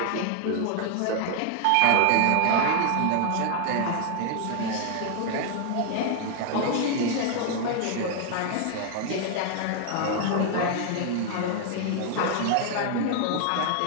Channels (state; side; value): different; both; correlation 0.00